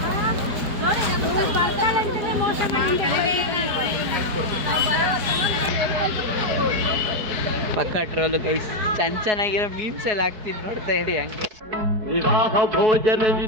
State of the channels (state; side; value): late; left; 4.7 ms